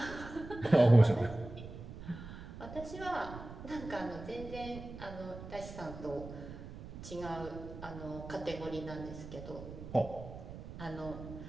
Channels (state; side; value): noise; right; rumble, 12 dB below the sound